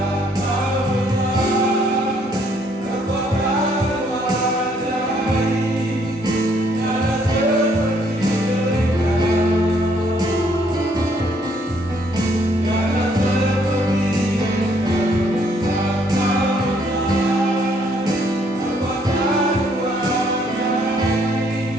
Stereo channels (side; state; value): both; normal; correlation 0.67